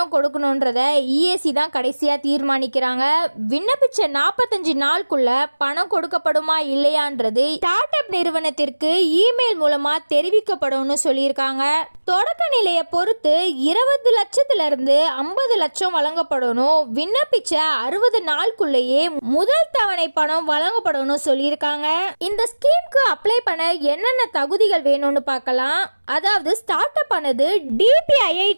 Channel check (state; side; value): inverted; both; correlation -1.00